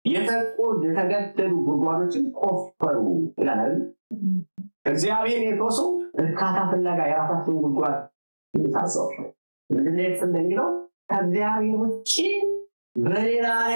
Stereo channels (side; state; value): both; inverted; correlation -1.00